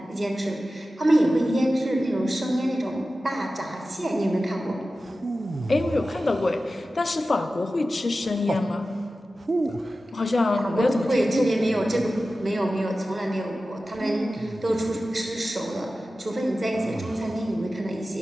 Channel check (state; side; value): normal; both; correlation 0.94